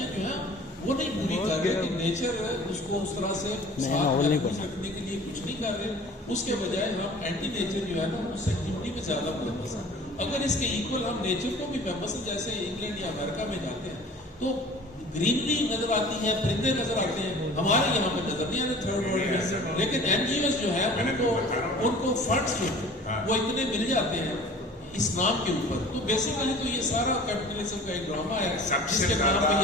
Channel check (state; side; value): normal; both; correlation 0.45